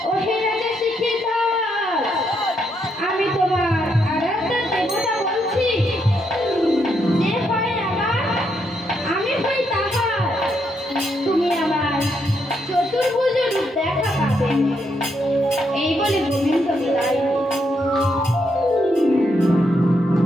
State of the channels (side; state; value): both; normal; correlation 0.78